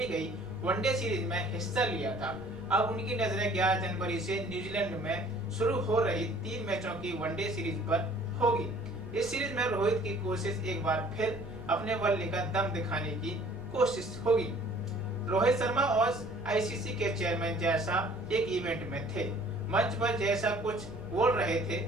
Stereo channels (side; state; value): right; noise; rumble, 18 dB below the sound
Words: गई वनडे सीरीज में हिस्सा लिया था। अब उनकी नजरें 11 जनवरी से न्यूजीलैंड में शुरू हो रही 3 मैचों की वनडे सीरीज पर होगी। इस सीरीज में रोहित की कोशिश एक बार फिर अपने बल्ले का दम दिखाने की कोशिश होगी। रोहित शर्मा और आईसीसी के चेयरमैन जय शाह एक इवेंट में थे। मंच पर जय शाह कुछ बोल रहे थे